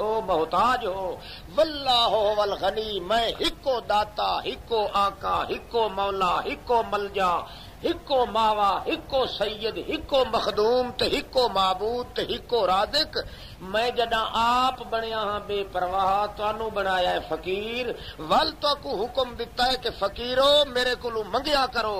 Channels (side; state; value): both; identical; correlation 1.00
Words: محتاج ہو، واللہ هو الغنی، میں ہکو داتا، ہکو آقا، ہکو مولا، ہکو ملجا، ہکو ماوا، ہکو سید، ہکو مخدوم تے ہکو معبود تے ہکو رازق۔ میں جڑا آپ بنیا ہاں بے پرواہ، تانوں بنایا ہے فقیر، ول تو کو حکم دیتا ہے کہ فقیرو میرے کولو منگیا کرو۔